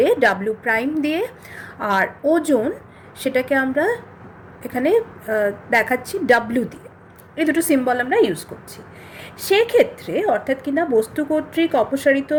ডাব্লিউ প্রাইম দিয়ে, আর ওজন সেটাকে আমরা এখানে দেখাচ্ছি ডাব্লিউ দিয়ে। এই দুটো সিম্বল আমরা ইউজ করছি। সেক্ষেত্রে অর্থাৎ কিনা বস্তু কর্তৃক অপসারিত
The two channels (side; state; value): both; identical; correlation 1.00